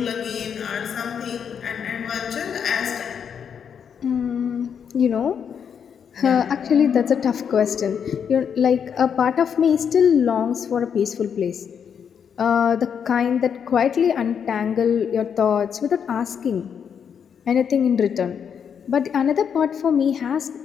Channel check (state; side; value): quieter; right; 7.5 dB